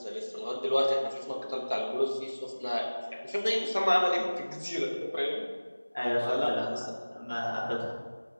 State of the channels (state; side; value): inverted; both; correlation -1.00